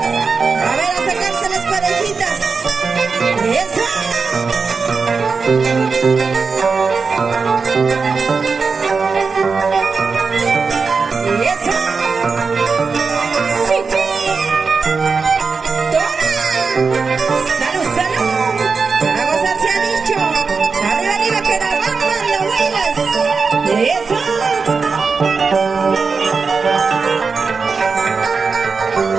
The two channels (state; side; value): quieter; left; 4.9 dB